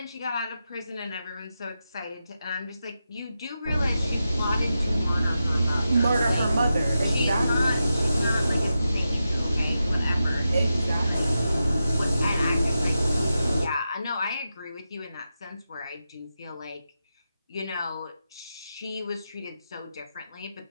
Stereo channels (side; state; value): both; inverted; correlation -0.89